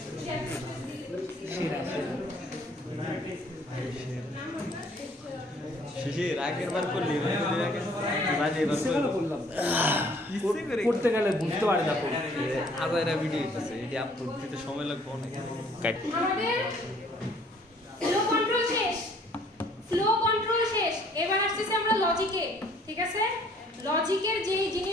শিশির আগের বার করলি করতে গেলে বুঝতে পারে না আদায়রা ভিডিও হইতেছে, এটি আপলোড দিতে সময় লাগবে অনেক। আমাদের ফ্লো কন্ট্রোল শেষ, এবার আসছে আমরা লজিকে। ঠিক আছে, লজিকের যে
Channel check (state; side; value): normal; both; correlation 0.59